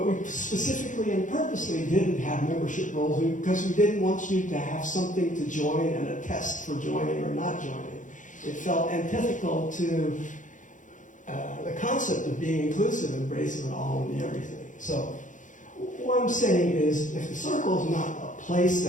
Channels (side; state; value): right; late; 0.37 ms